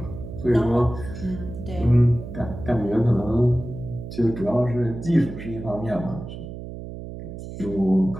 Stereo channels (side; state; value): right; noise; hum, 11 dB below the sound